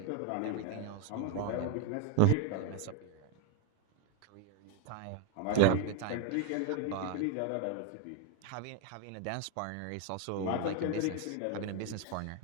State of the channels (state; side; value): different; both; correlation 0.01